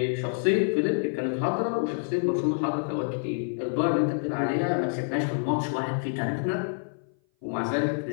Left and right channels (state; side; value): silent; right; 57 dB below the other